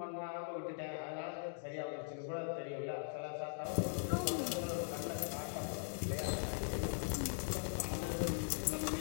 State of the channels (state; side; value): silent; right; digital silence